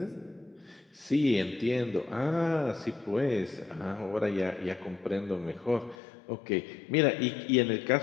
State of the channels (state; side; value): drops out; right; at 6.0 s